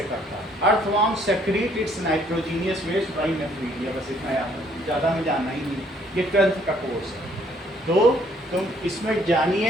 करता है। Earthworm secrete its nitrogenous waste by nephridia, बस इतना याद है, ज़्यादा में जानना ही नहीं, ये 12th का कोर्स है। तो तुम इसमें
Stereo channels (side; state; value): both; normal; correlation 0.64